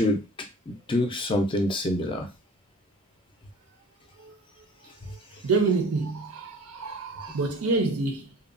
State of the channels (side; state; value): both; normal; correlation 0.45